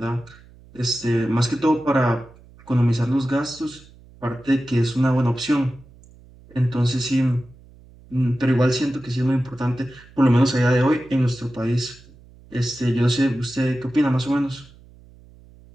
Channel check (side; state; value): right; noise; hum, 24 dB below the sound